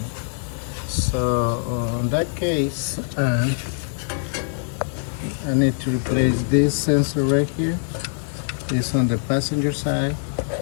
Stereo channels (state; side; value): silent; right; digital silence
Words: So in that case, I need to replace this sensor right here. It's on the passenger side,